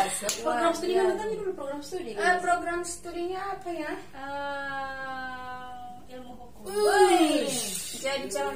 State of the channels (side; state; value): both; identical; correlation 1.00